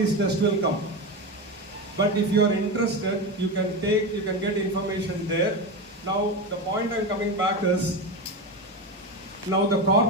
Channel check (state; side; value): normal; both; correlation 0.20